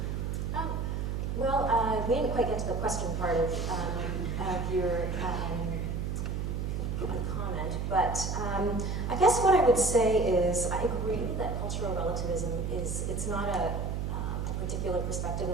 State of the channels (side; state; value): right; noise; hum, 1 dB below the sound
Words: Well, we didn't quite get to the question part of your comment, but I guess what I would say is I agree that cultural relativism it's not a particular perspective